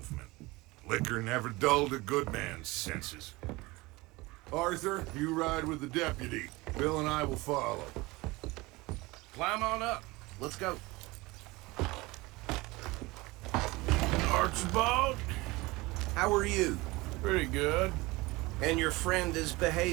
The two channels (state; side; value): quieter; left; 22.1 dB